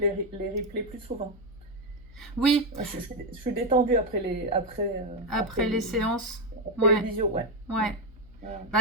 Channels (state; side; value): noise; left; hum, 21 dB below the sound